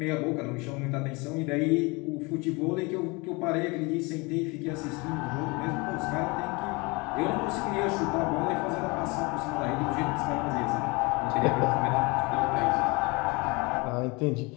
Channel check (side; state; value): right; quieter; 26.9 dB